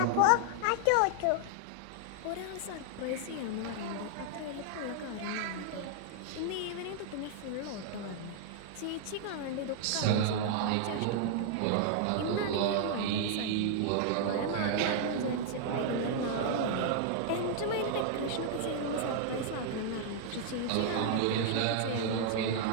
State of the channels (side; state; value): both; different; correlation 0.00